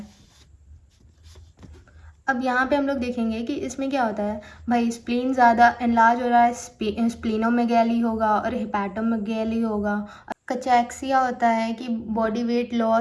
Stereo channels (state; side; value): identical; both; correlation 1.00